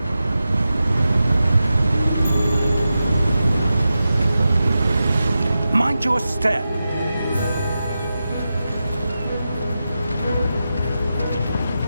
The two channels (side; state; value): both; inverted; correlation -0.91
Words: Mind your step.